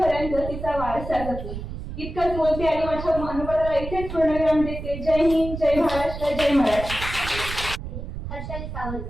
तिचा वारसा जपू. इतकंच बोलते आणि माझ्या मनोबलाला इथेच पूर्णविराम देते. जय हिंद, जय महाराष्ट्र, जय मराठी. हर्षाली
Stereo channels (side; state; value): right; noise; rumble, 8 dB below the sound